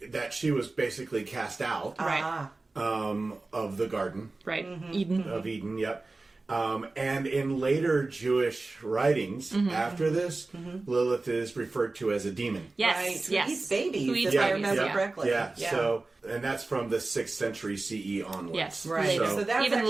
that she was basically cast out. Right. Of the garden. Right. Eden. Of Eden, yep. And in later Jewish writings after this, Lilith is referred to as a demon. Yes, right. Who yes. eats babies, Who eats if I babies, remember correctly. Yeah. So, and that's from the 6th century CE onwards. Yes, right. So that's even actually,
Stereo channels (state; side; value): quieter; left; 3.4 dB